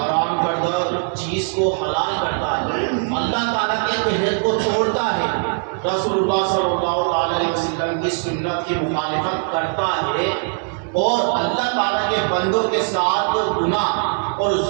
کردہ چیز کو حلال کرتا ہے، اللہ تعالیٰ کے عہد کو توڑتا ہے، رسول اللہ صلی اللہ علیہ وسلم کی سنت کی مخالفت کرتا ہے اور اللہ تعالیٰ کے بندوں کے ساتھ گناہ اور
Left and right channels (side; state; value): left; silent; 56 dB below the other